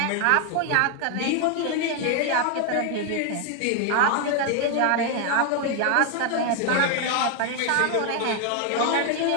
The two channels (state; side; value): different; both; correlation 0.01